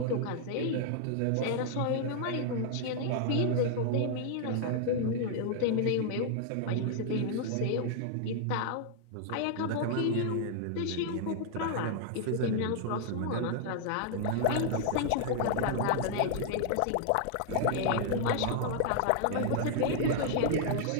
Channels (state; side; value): different; both; correlation -0.01